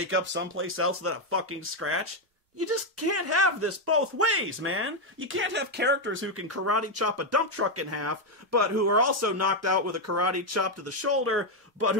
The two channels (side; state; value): both; normal; correlation 0.03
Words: up someplace else with a fucking scratch? You just can't have this both ways, man. You can't have characters who can karate chop a dump truck in half, but who are also knocked out with a karate chop to the shoulder, but